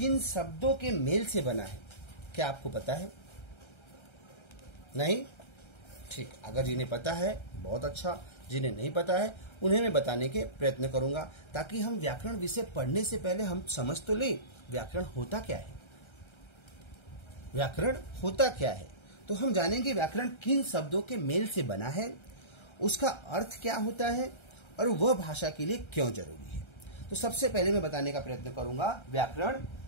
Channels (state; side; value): late; right; 1.3 ms